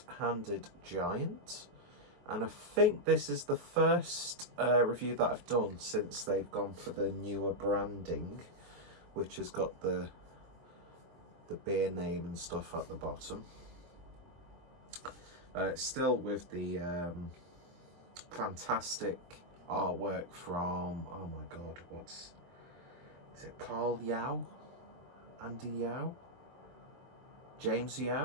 Giant, and I think this is the first review that I've done since they've gone for the newer branding, which has got the beer name and stuff at the bottom. Still with the fantastic artwork from, oh my god, is it Carl Yao? Andy Yao? James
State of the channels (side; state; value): left; late; 23 ms